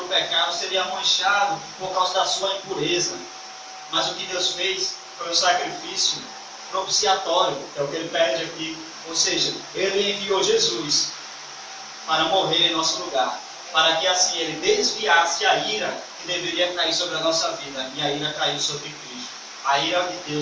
pecado, seria manchado por causa da sua impureza. Mas o que Deus fez foi um sacrifício propiciatório, é o que ele pede aqui. Ou seja, ele enviou Jesus para morrer em nosso lugar, para que assim ele desviasse a ira que deveria cair sobre a nossa vida, e a ira caiu sobre Cristo. A ira de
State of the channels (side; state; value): both; identical; correlation 1.00